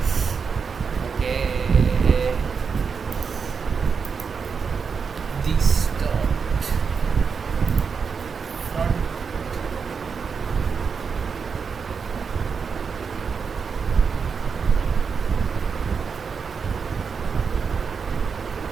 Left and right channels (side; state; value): left; quieter; 5.7 dB